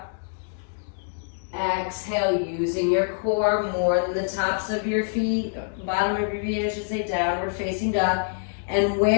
Exhale, using your core more than the tops of your feet, bottom of your feet, I should say, downward facing dog. And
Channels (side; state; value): right; silent; digital silence